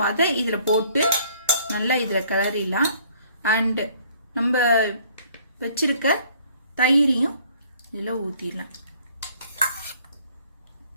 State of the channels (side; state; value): both; inverted; correlation -0.59